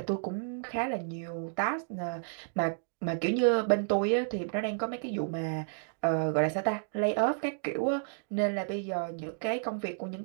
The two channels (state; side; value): silent; left; digital silence